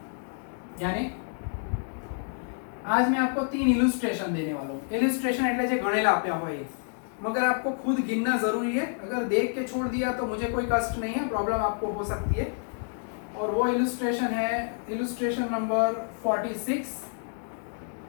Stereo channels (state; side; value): silent; right; 59 dB below the other